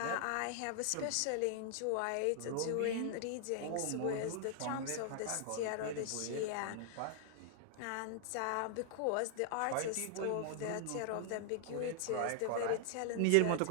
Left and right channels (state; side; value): different; both; correlation 0.00